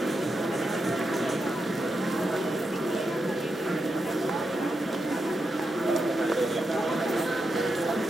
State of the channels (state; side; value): normal; both; correlation 0.86